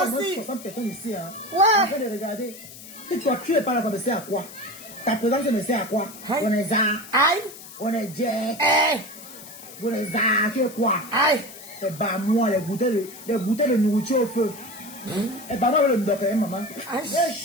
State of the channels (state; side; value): noise; left; hiss, 16 dB below the sound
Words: aussi. 60 personnes ici, hein. Ouais. En train de regarder. Et toi, tu n'es pas là pour me sert à quoi? Ta présence ne sert à quoi? Aïe. On est ça. Aïe! On est Jack. Hey. On est ça. Tu es quoi? Aïe! Et bah, moi, les bouteilles de nourriture au feu. Et bah, moi, le docteur, maman. Aïe,